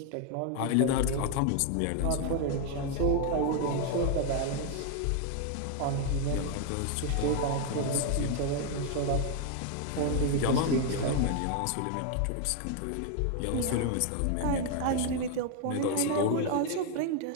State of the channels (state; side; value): different; both; correlation 0.00